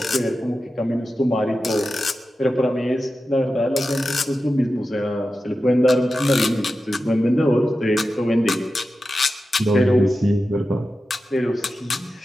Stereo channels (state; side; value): normal; both; correlation 0.92